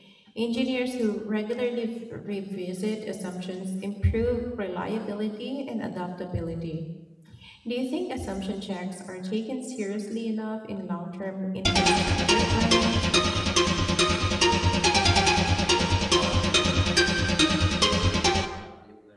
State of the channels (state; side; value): identical; both; correlation 1.00